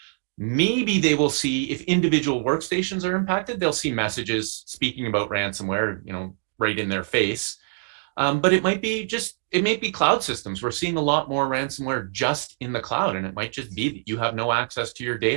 Maybe they will see, if individual workstations are impacted, they'll see messages speaking about ransomware, right in their face. But it might be cloud systems. We're seeing a lot more ransomware just in the cloud, and it might just be that you have no access to your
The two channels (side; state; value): left; silent; digital silence